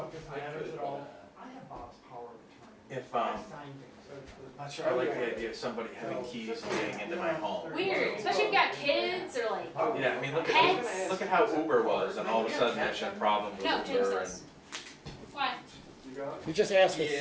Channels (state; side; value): identical; both; correlation 1.00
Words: if this matters at all. I have Bob's power of attorney. if, I signed things. not sure I like the idea of somebody having keys and getting into my home. Weird, especially if you've got kids or like Yeah, I mean, Pets. look at how Uber was, and all of a sudden there's been problems with No, James Uber does. and. Why? You just asked for